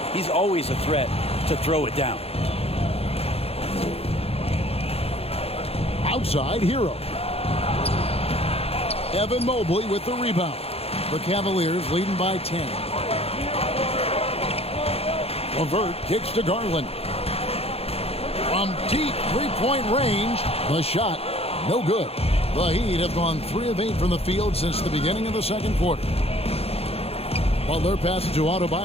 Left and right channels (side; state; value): right; late; 0.29 ms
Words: he's always a threat to throw it down. Outside, Hero. Evan Mobley with the rebound. The Cavaliers leading by 10. LeVert kicks to Garland. From deep three-point range, the shot, no good. The Heat have gone 3 of 8 from the field since the beginning of the second quarter. Butler passes to